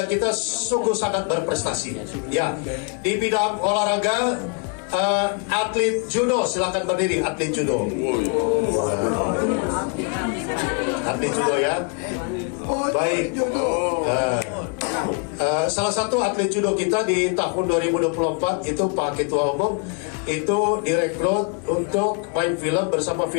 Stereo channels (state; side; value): quieter; right; 36.3 dB